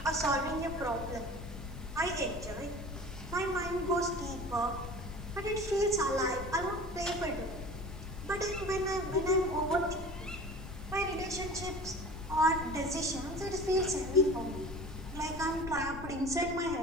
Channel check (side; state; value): left; noise; rumble, 10 dB below the sound